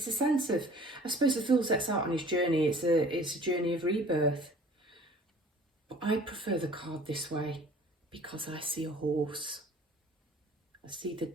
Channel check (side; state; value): both; normal; correlation 0.48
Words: a sense of, I suppose the fool sets out on his journey, it's a journey of rebirth. But I prefer the card this way because I see a horse. I see the